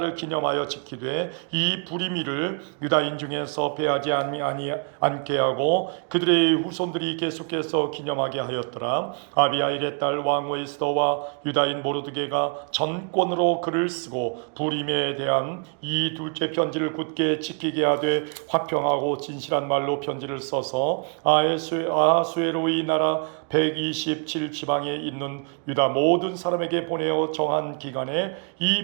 기념하여 지키되 이 불임일을 유다인 중에서 배하지 않게 하고 그들의 후손들이 계속해서 기념하게 하였더라. 아비하일의 딸 왕후 에스더와 유다인 모르드게가 전권으로 글을 쓰고 불임에 대한 이 둘째 편지를 굳게 지키게 하되 화평하고 진실한 말로 편지를 써서 아하수에로의 나라 127지방에 있는 유다 모든 사람에게 보내어 정한 기간에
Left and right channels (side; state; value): left; quieter; 39.8 dB